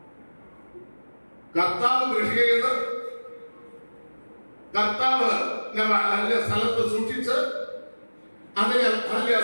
കർത്താവ് സ്ഥലത്ത് സൂക്ഷിച്ച് അതിനെ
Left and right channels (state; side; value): inverted; both; correlation -1.00